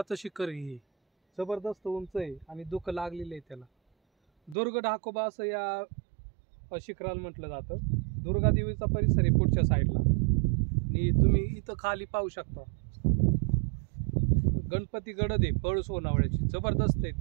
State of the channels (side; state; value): left; drops out; at 4.5 s